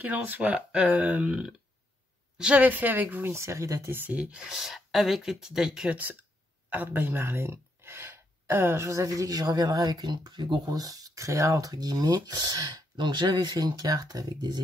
en soit, j'avais fait avec vous une série d'ATC avec les petits die cuts Art by Marlène. Je vous avais dit que je reviendrai avec une plus grosse créa, entre guillemets. Donc, j'avais fait une carte avec des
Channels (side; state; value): both; normal; correlation 0.78